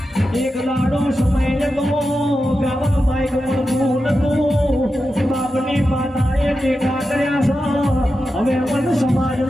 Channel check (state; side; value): normal; both; correlation 0.90